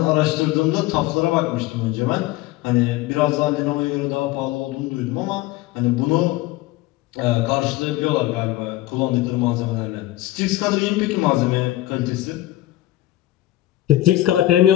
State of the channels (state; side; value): quieter; right; 15.9 dB